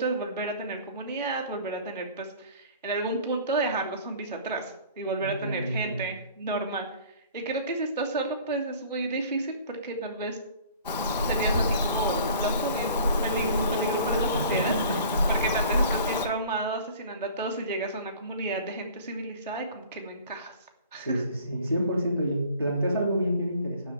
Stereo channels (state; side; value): inverted; both; correlation -0.48